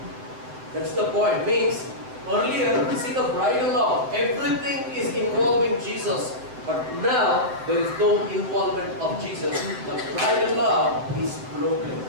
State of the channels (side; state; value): left; late; 8.0 ms